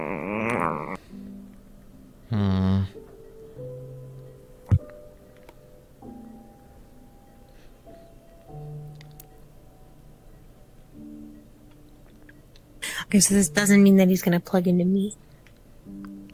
Okay, so this doesn't mean that he's gonna plug into me.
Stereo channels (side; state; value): both; identical; correlation 1.00